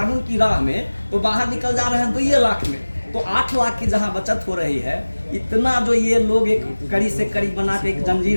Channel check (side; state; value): both; inverted; correlation -1.00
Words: की राह में तो बाहर निकल जा रहे हैं 2 लाख में। तो 8 लाख की जहां बचत हो रही है, इतना जो ये लोग एक कड़ी से कड़ी बना के एक